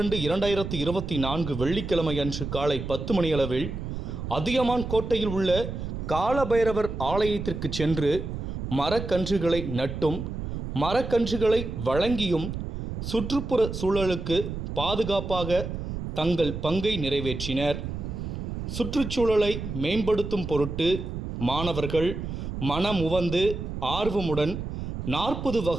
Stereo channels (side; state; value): right; noise; rumble, 6 dB below the sound